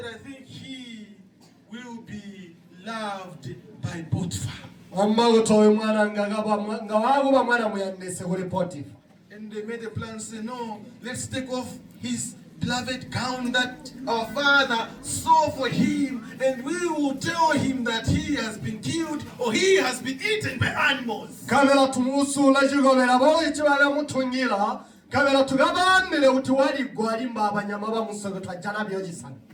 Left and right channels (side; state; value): both; identical; correlation 1.00